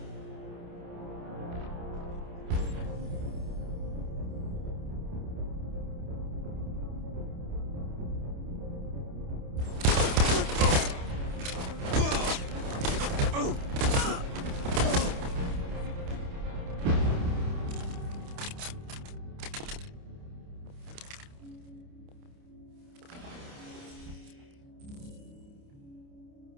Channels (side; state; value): left; late; 28 ms